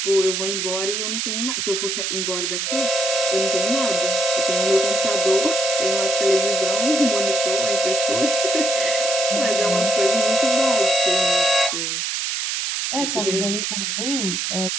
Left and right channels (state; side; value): noise; right; hiss, 1 dB below the sound